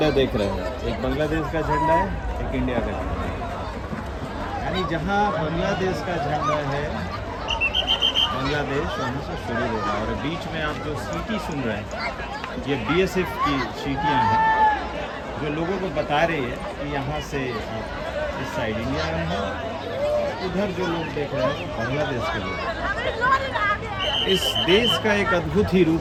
देख रहे हैं, एक बांग्लादेश का झंडा है, एक इंडिया का झंडा है। यानी जहाँ बांग्लादेश का झंडा है, बांग्लादेश वहाँ से शुरू होगा। और बीच में आप जो सीटी सुन रहे हैं, ये बीएसएफ की सीटियाँ हैं जो लोगों को बता रही है कि यहाँ से आप इस साइड इंडिया में हैं, उधर जो लोग देख रहे हैं वो बांग्लादेश के लोग। इस देश का एक अद्भुत ही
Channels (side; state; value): both; identical; correlation 1.00